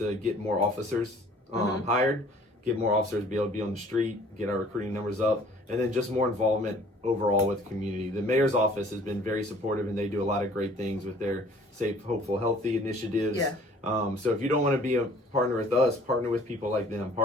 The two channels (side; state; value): both; normal; correlation 0.54